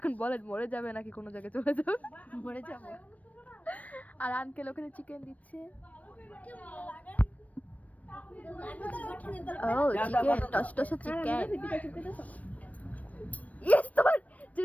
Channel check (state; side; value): late; right; 0.069 ms